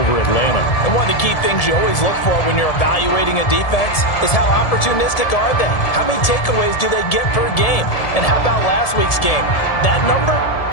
Atlanta. And one of the key things you always look for when you're evaluating a defense is how opportunistic are they? How many takeaways do they get per game? And how about last week's game? That number,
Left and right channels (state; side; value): late; right; 1.7 ms